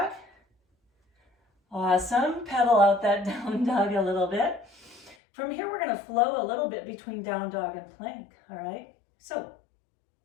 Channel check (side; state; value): right; drops out; at 5.2 s